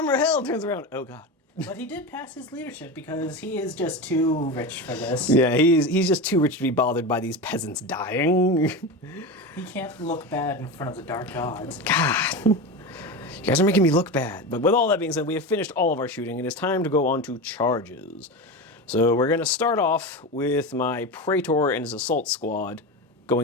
held. Turns around. Oh god. But he did pass his leadership because he is just too rich for this. Yeah, he's just too rich to be bothered by these peasants dying. He can't look bad in front of the dark gods. God. You guys are making me look bad. But with all that being said, we have finished all of our shooting. It is time to go on to charges. So we're going to start off with my Praetor and his assault squad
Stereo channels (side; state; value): both; normal; correlation 0.22